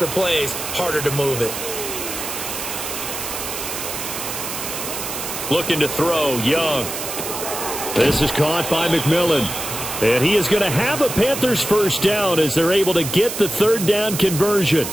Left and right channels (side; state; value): right; noise; hiss, 6 dB below the sound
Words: plays, harder to move it. Looking to throw, Young. This is caught by McMillan. And he is going to have a Panthers 1st down as they're able to get the 3rd down conversion.